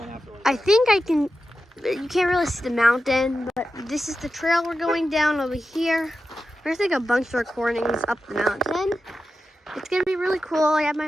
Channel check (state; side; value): normal; both; correlation 0.91